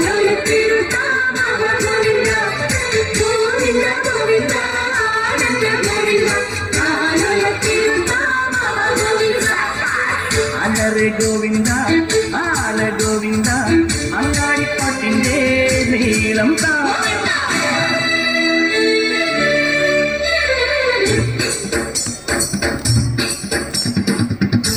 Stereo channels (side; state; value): both; identical; correlation 1.00